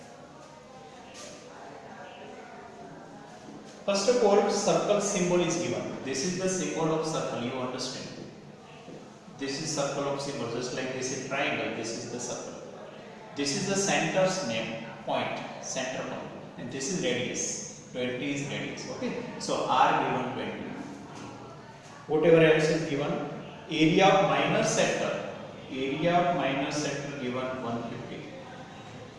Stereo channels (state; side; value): identical; both; correlation 1.00